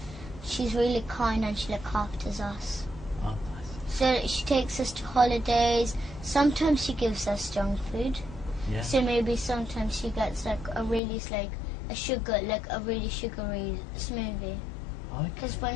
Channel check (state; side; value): drops out; right; at 11.0 s